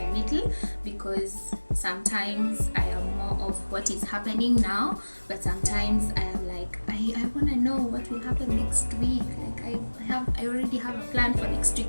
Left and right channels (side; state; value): both; inverted; correlation -1.00